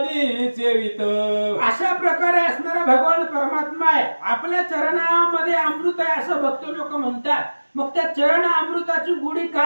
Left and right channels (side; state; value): both; inverted; correlation -1.00